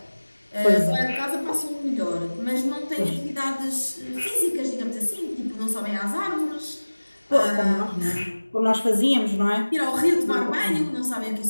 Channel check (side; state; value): both; inverted; correlation -1.00